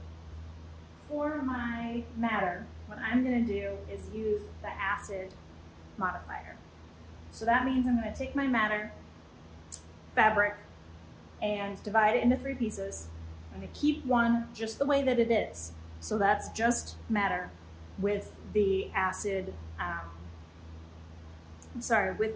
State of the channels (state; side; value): identical; both; correlation 1.00